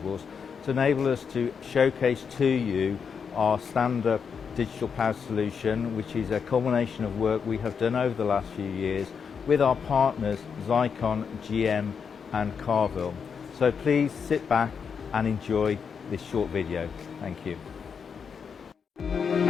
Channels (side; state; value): right; quieter; 6.4 dB